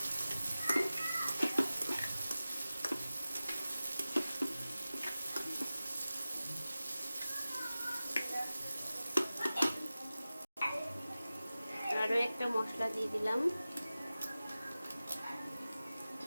আরো একটা মশলা দিয়ে দিলাম।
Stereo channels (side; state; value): both; inverted; correlation -0.96